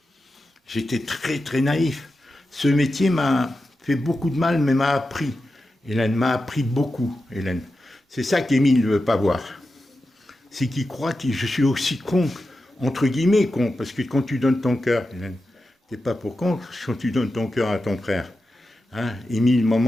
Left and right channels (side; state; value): both; normal; correlation 0.91